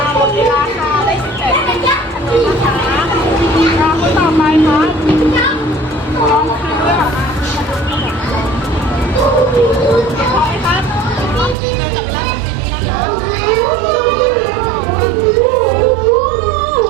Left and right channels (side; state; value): left; drops out; at 11.6 s